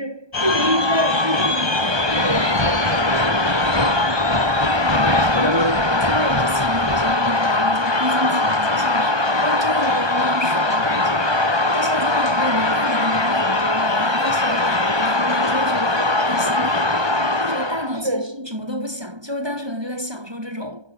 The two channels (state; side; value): late; left; 1.2 ms